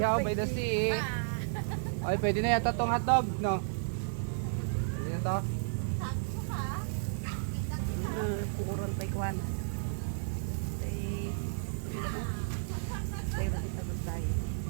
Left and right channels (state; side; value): silent; left; 56 dB below the other